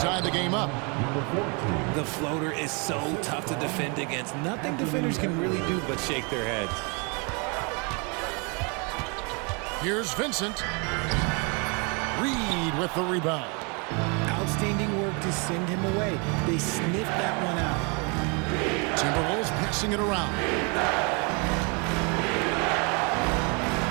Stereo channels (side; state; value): left; quieter; 32.9 dB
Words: the game up. The floater is so tough to defend against. Nothing defenders can really do but shake their heads. Here's Vincent. Reed with the rebound. Outstanding work to send him away. They sniffed that one out. Timberwolves passing it around.